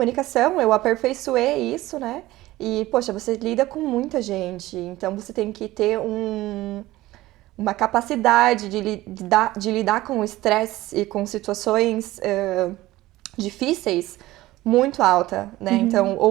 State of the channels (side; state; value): left; quieter; 17.2 dB